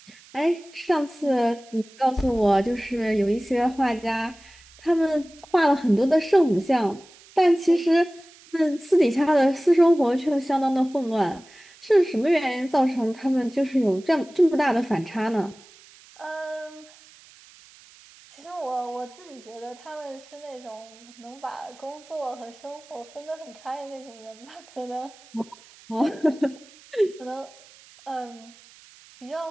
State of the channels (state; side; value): noise; right; hiss, 24 dB below the sound